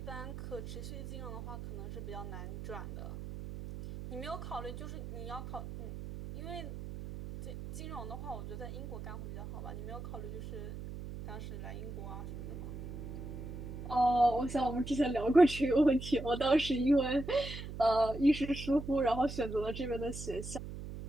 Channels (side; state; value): right; noise; hum, 9 dB below the sound